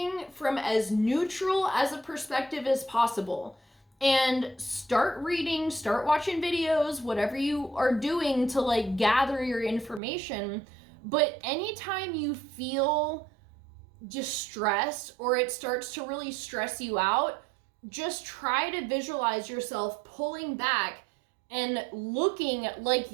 from as neutral as a perspective as possible. And start reading, start watching videos, whatever you are doing to like gather your information. But anytime you feel distressed or it starts to really stress you out, just try to visualize yourself pulling back and looking like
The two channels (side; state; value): left; drops out; at 10.0 s